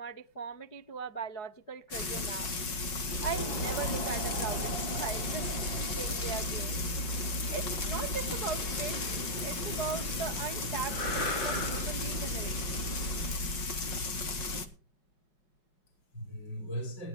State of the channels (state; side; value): late; right; 5.5 ms